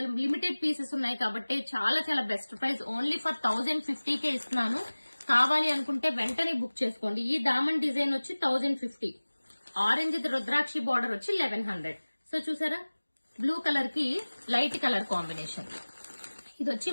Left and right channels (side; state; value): both; inverted; correlation -1.00